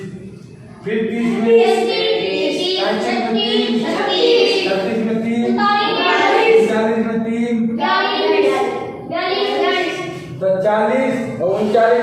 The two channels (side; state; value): both; identical; correlation 1.00